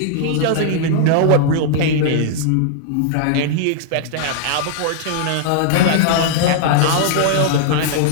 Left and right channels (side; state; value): both; different; correlation -0.01